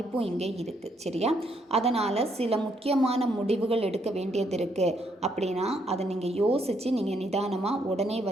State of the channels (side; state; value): both; normal; correlation 0.73